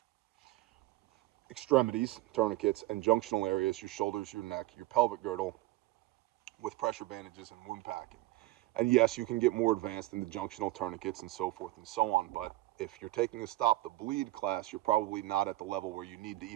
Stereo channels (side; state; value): left; quieter; 17.5 dB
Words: Extremities, tourniquets, and junctional areas, your shoulders, your neck, your pelvic girdle, with pressure bandages and wound packing. And yes, you can get more advanced in the junctional tourniquets and so forth and so on, but if you're taking a Stop the Bleed class, you're probably not at the level where you need to